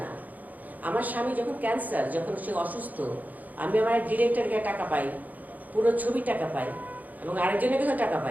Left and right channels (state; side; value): late; left; 0.080 ms